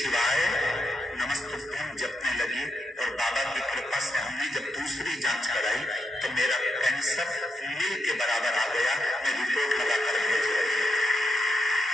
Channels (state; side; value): normal; both; correlation 0.82